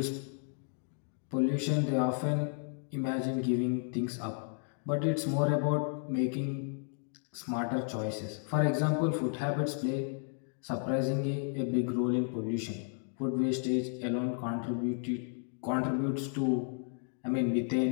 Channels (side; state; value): right; silent; 56 dB below the other